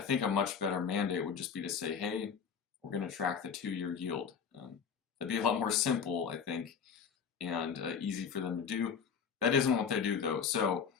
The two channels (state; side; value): quieter; right; 6.7 dB